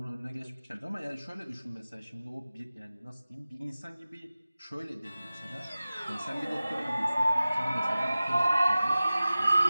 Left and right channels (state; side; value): inverted; both; correlation -0.97